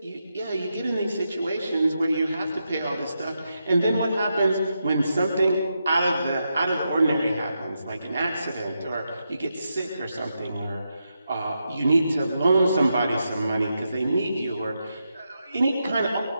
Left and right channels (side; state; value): both; inverted; correlation -0.85